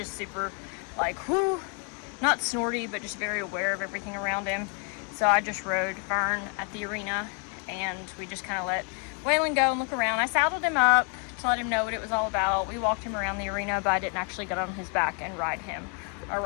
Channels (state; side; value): quieter; right; 36.3 dB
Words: super like, whoo, not snorty, but just very aware of everything around him. So I just rode Fern at the arena and we just kind of let Waylon go and look around. I saddled him up to let him know what it was all about. We walked him around the arena, but I didn't actually get on his back and ride him